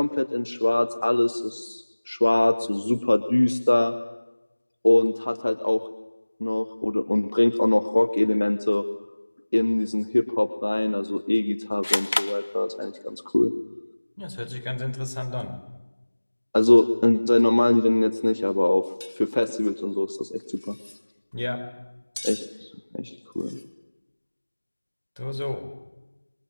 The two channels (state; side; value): inverted; both; correlation -1.00